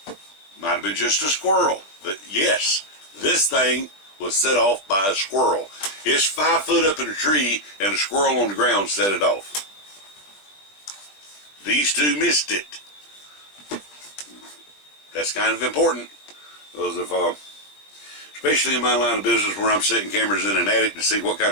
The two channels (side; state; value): right; late; 20 ms